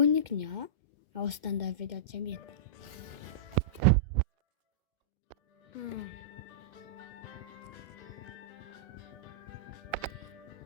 а установить видеоцем нет.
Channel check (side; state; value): left; late; 2.1 ms